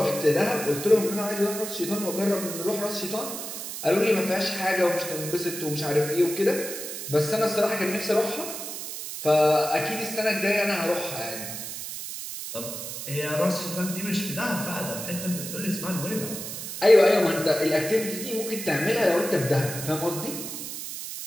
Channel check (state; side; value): noise; right; hiss, 7 dB below the sound